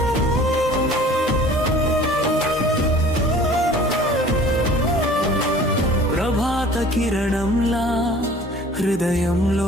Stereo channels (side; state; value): both; normal; correlation 0.48